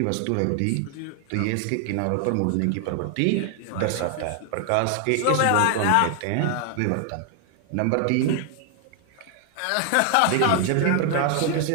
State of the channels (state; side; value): different; both; correlation 0.00